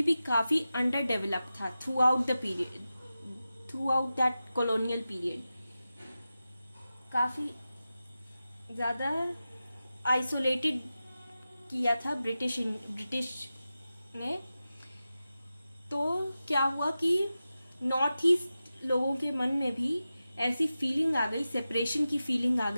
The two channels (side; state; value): both; inverted; correlation -0.93